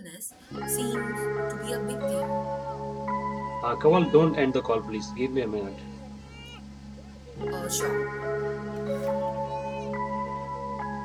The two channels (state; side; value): identical; both; correlation 1.00